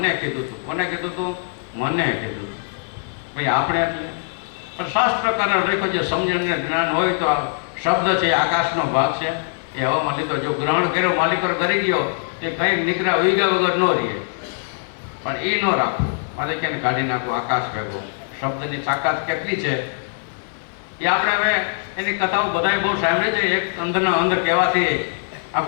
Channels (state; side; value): silent; right; digital silence